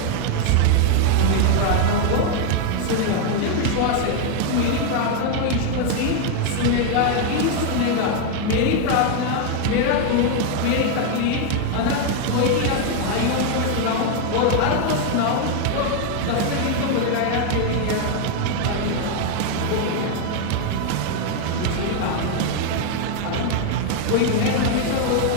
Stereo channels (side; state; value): both; different; correlation 0.01